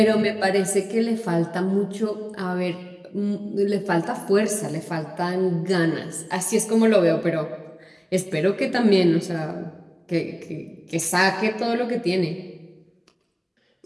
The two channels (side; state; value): both; identical; correlation 1.00